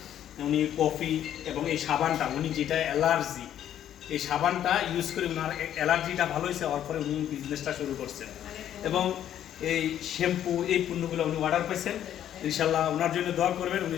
উনি কফি এবং এই সাবানটা, উনি যেটা অ্যালার্জি, এই সাবানটা ইউজ করে ওনার অ্যালার্জিটা ভালো হয়েছে, হওয়ার পরে উনি বিজনেসটা শুরু করছেন। এবং এই শ্যাম্পু, এই পণ্যগুলো উনি অর্ডার পেয়েছেন। ইনশাল্লাহ ওনার জন্য দোয়া করবেন, উনি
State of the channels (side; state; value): right; quieter; 10.7 dB